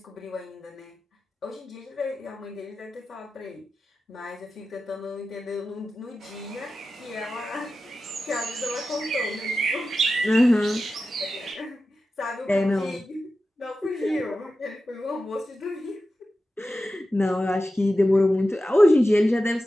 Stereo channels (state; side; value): normal; both; correlation 0.93